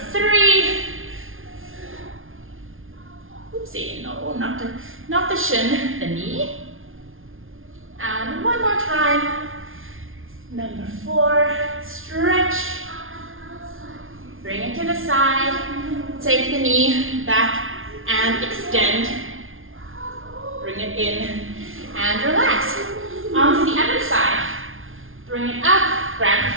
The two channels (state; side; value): late; left; 0.59 ms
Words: 3. Oopsie, no, not the shin, the knee. And one more time. Number 4, stretch. Bring it to the side. Take the knee back and extend. Bring it in and relax. On to the other side. Bring it up, grab